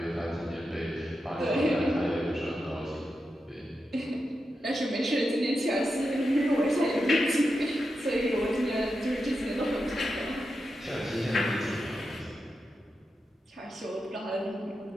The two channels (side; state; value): both; normal; correlation 0.89